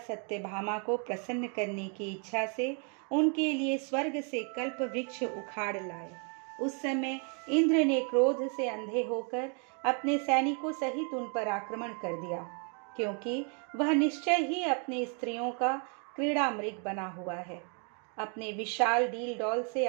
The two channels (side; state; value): left; quieter; 39.0 dB